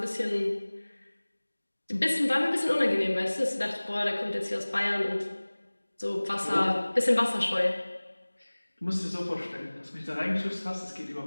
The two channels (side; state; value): both; inverted; correlation -1.00